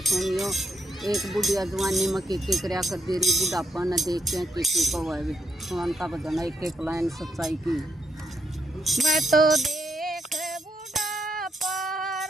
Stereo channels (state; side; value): normal; both; correlation 0.79